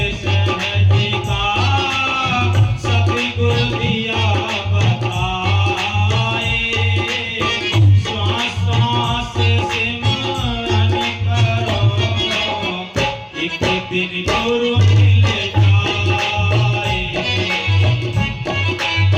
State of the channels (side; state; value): both; identical; correlation 1.00